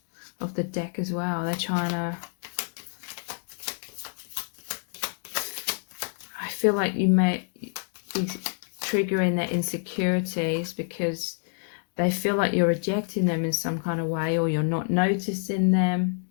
of the deck as well. They're trying to, I feel like you may be triggering their insecurities because they feel like you're rejecting them in some kind of way, or you're not noticing them,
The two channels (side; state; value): right; silent; digital silence